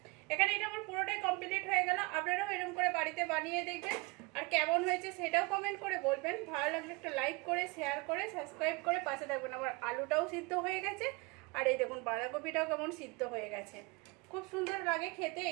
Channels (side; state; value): left; quieter; 27.3 dB